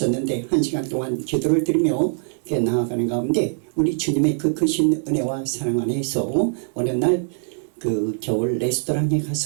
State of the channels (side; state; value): left; silent; digital silence